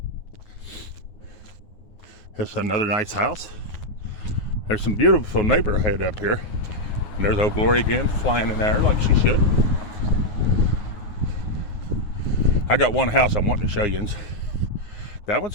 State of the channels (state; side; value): late; right; 9.6 ms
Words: It's another nice house. There's some beautiful neighborhood up here. And there's old Glory again, flying in there like she should. I got one house I'm wanting to show you. That